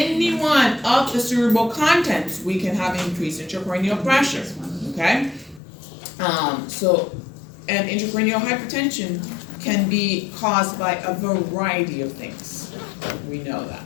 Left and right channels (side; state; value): right; drops out; at 5.6 s